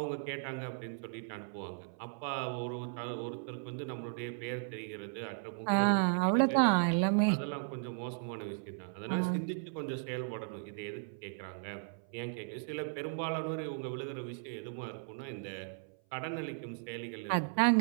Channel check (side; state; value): left; silent; 54 dB below the other